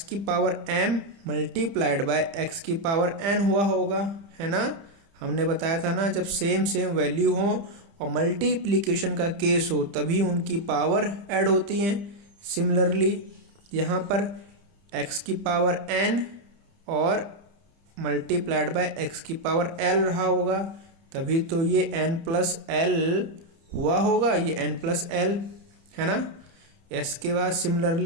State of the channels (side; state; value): left; late; 30 ms